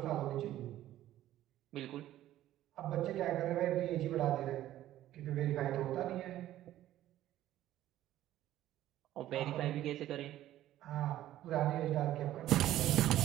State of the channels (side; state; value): left; quieter; 13.5 dB